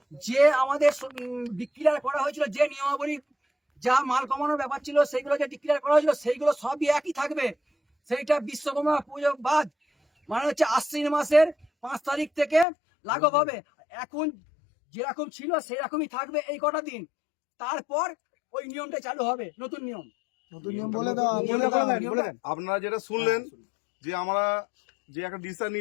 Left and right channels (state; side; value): drops out; right; at 12.7 s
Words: যে আমাদের ডিক্লেয়ার করা হয়েছিল, যে নিয়মাবলী যা মাল কমানোর ব্যাপার ছিল সেইগুলো যে ডিক্লেয়ার করা হয়েছিল সেইগুলো সবই একই থাকবে। সেইটা বিশ্বকর্মা পুজো বাদ মানে হচ্ছে আশ্বিন মাসের 5 তারিখ থেকে লাগু হবে। এখন যেরকম ছিল সেরকমই থাকবে এই কটা দিন, তারপর ওই নিয়মটা চালু হবে, নতুন নিয়ম। আপনারা যেটা শুনলেন যে আমরা যে একটা ডিসিশন